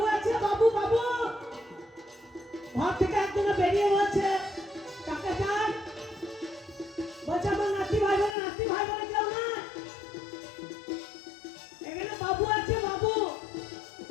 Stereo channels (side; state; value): right; drops out; at 8.3 s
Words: আছে বাবু বাবু ঘর থেকে একজন বেরিয়ে বলছে কাকে চাই বলছে আমার নাতি ভাই বোনে কেউ না এখানে বাবু আছে বাবু